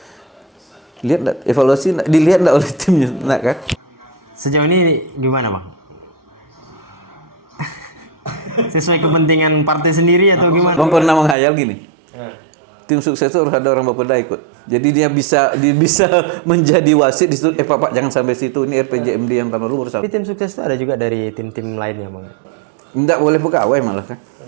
Lihat enggak, evaluasi enggak, dilihat enggak oleh timnya, enggak kan? Sejauh ini gimana bang? Sesuai kepentingan partai sendiri atau gimana? Bang pernah menghayal gini, tim sukses itu harus ada orang Bapeda ikut. Jadi dia bisa menjadi wasit di situ. Pak jangan sampai situ. Ini RPJMD yang tahun lalu bersama. Tapi tim sukses itu ada juga dari tim-tim lainnya bang. Enggak boleh pegawai malah kan.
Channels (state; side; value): drops out; left; at 11.4 s